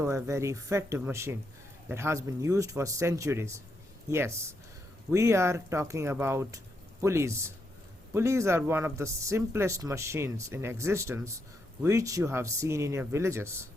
a very effective machine that has been used for centuries. Yes, we are talking about pulleys. Pulleys are one of the simplest machines in existence which you have seen in your villages,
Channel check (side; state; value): both; normal; correlation 0.80